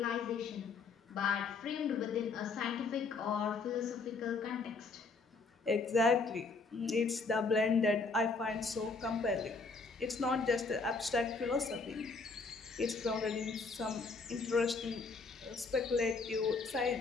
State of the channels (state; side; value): quieter; right; 4.2 dB